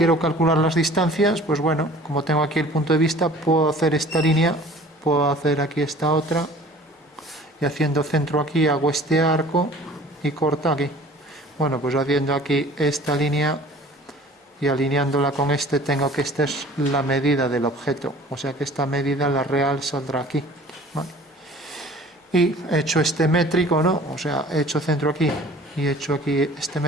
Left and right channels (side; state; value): both; normal; correlation 0.48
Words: calcular las distancias, pues bueno, como tengo aquí el punto de vista, puedo hacer esta línea, puedo hacer aquí esta otra, y haciendo centro aquí hago este arco y corta aquí. Bueno, pues haciendo aquí esta línea y alineándola con este, tengo que esta es la medida del objeto, o sea que esta medida, la real, saldrá aquí. ¿Vale? Y he hecho este métrico, ¿no? O sea, he hecho centro aquí y he hecho aquí este